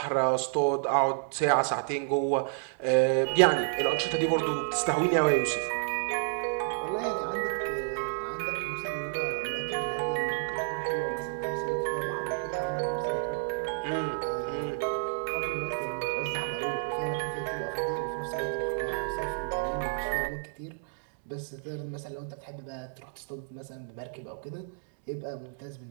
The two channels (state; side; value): silent; left; digital silence